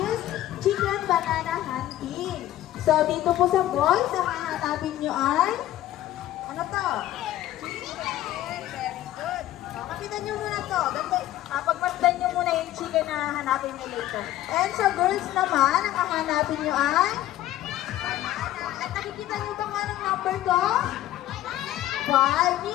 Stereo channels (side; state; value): right; quieter; 13.9 dB